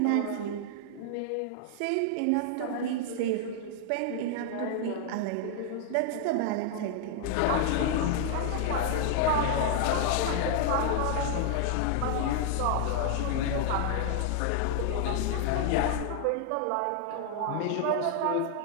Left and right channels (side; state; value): both; different; correlation -0.01